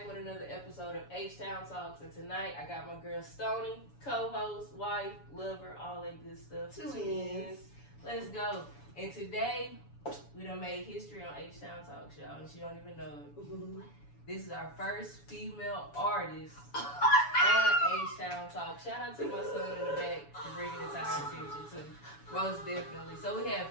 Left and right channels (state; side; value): late; right; 7.1 ms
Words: with another episode of HTOWN TALKS. And tonight I got my girl Stoney, co-host, wife, lover, all that good stuff. Twins. Let's go. And today we done made history on HTOWN TALKS, y'all, and she don't even know it. Mm-hmm. This is our first female artist on HTOWN TALKS. Shout out to my son in the back for bringing it to our attention too. Most definitely. So we have